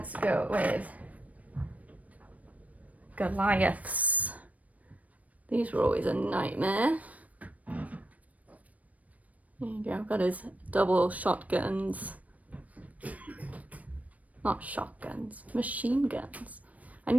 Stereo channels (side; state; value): left; late; 0.070 ms